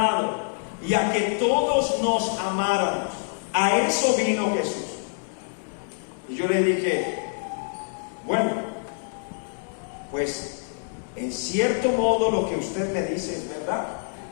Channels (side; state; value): right; silent; digital silence